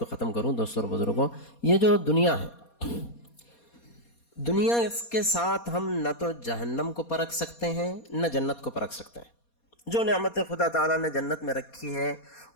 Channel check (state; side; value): late; right; 4.2 ms